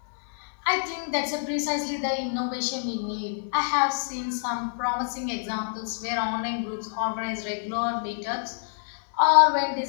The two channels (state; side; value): silent; right; digital silence